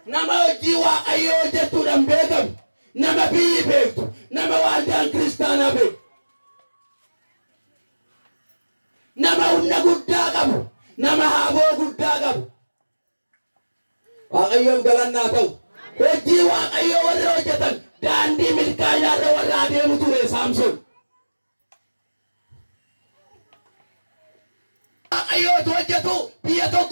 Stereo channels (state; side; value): inverted; both; correlation -1.00